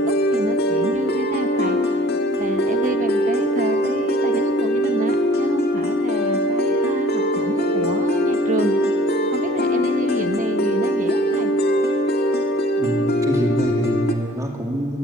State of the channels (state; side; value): normal; both; correlation 0.52